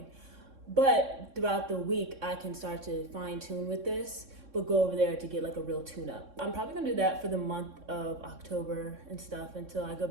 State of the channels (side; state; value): left; late; 3.6 ms